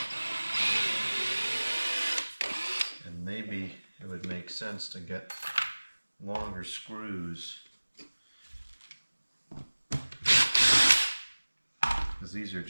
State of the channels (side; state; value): both; inverted; correlation -1.00